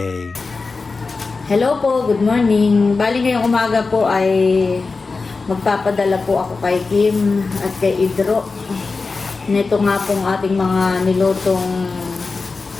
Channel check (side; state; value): right; quieter; 4.1 dB